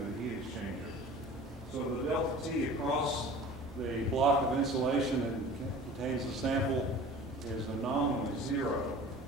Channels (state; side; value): normal; both; correlation 0.42